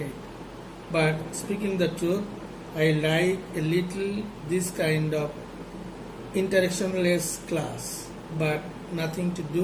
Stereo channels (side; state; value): both; identical; correlation 1.00